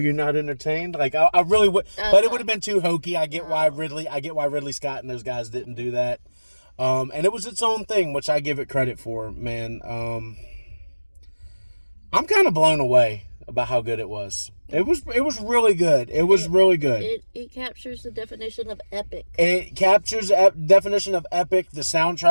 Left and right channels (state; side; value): inverted; both; correlation -1.00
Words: not entertained. Like, I really would, but it would have been too hokey. I get why Ridley Scott and those guys didn't do that. And it was its own thing, which I give it credit for, man. I'm kind of blown away about how good it was. It was really good. It was really good. It captures the definition of epic. It captures the definition of epic. The